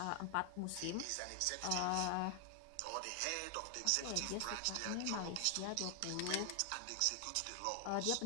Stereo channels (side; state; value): both; different; correlation 0.00